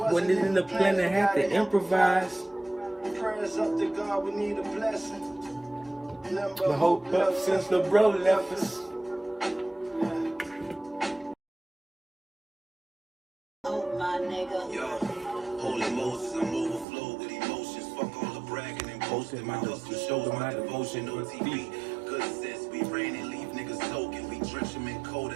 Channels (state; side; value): drops out; left; at 16.9 s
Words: When it in the plan, I had to improvise. Prayers up to God, we need a blessing. But hope up since the bro left us. Oh my nigga. Yo, holy Moses, I'm overflowed with emotions. Fuck all the bragging and boasting. My hustle shows my devotion on TV. Good sense, we rain and leave niggas soaking. We drench them in code